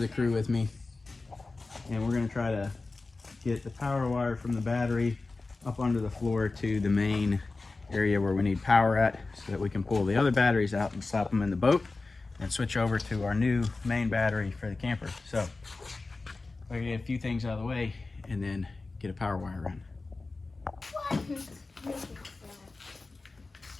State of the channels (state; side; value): quieter; right; 3.6 dB